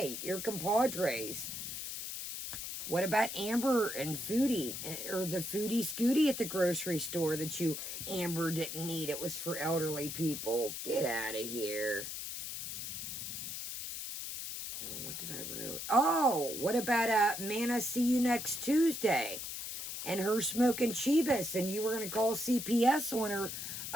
You're compadres. What about Amber and Foodie? Or the Foodie Scooty at the grocery store that Amber didn't need. It was for elderly people. Get out of here. What did I write? Oh, what about Mana see you next Tuesday? And her smoking Chivas. And you were going to call CPS on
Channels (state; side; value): noise; left; hiss, 6 dB below the sound